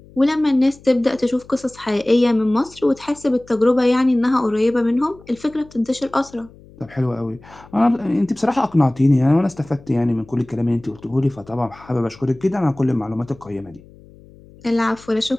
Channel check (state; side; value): noise; left; hum, 24 dB below the sound